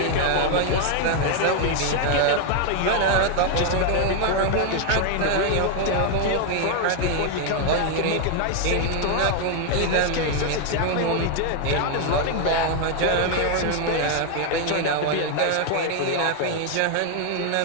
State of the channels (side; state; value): both; different; correlation 0.01